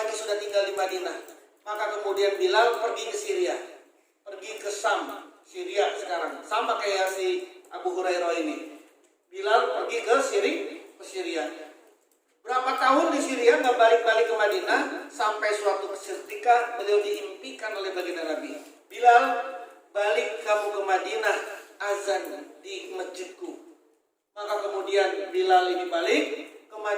sudah tinggal di Madinah. Maka kemudian Bilal pergi ke Syria, pergi ke Sam, Syria sekarang. Sama kayak si Abu Hurairah ini. Bilal pergi ke Syria. Berapa tahun di Syria nggak balik-balik ke Madinah, sampai suatu ketika beliau diimpikan oleh baginda Nabi. Bilal, balik kamu ke Madinah, azan di masjidku. Maka kemudian Bilal ini balik ke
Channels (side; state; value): both; identical; correlation 1.00